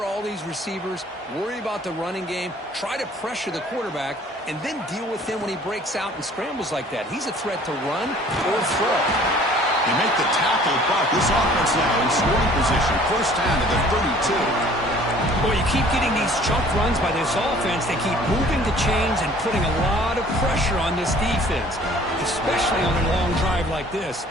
all these receivers, worry about the running game, try to pressure the quarterback, and then deal with him when he breaks out and scrambles like that. He's a threat to run or throw. They make the tackle, but this offense now in scoring position. First down to the 32. Well, you keep getting these chunk runs by this offense. They keep moving the chains and putting a lot of pressure on this defense, especially on a long drive like this.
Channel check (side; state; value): both; normal; correlation 0.53